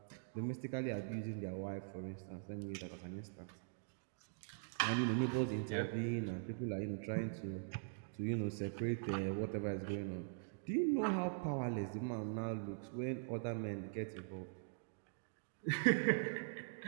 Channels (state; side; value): silent; left; digital silence